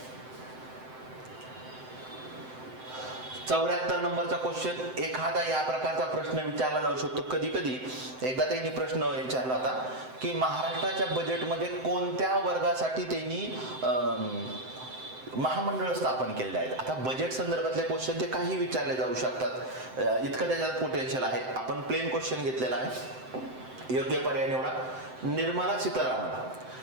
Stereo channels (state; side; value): late; left; 7.8 ms